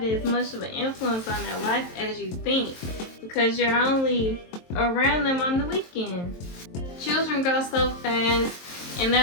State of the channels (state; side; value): late; right; 23 ms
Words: as much of an influence on their life as you think, because you're only around them on the weekend. Children grow so fast, and